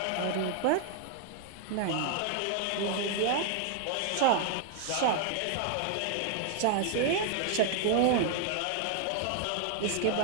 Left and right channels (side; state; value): both; different; correlation 0.00